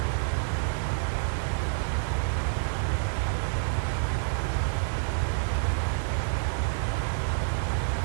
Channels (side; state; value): left; silent; 59 dB below the other